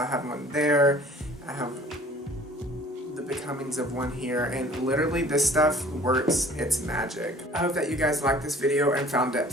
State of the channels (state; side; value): normal; both; correlation 0.50